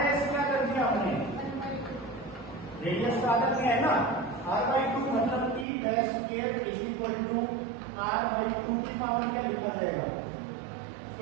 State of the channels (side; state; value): left; drops out; at 5.7 s